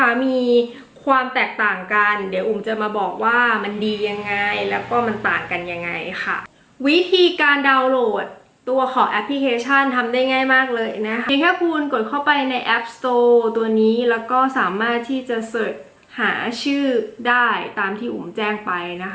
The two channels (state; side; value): identical; both; correlation 1.00